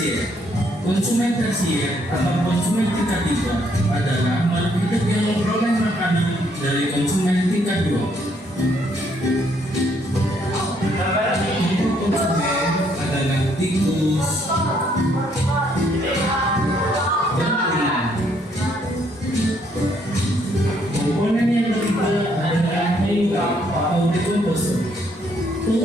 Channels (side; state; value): both; normal; correlation 0.69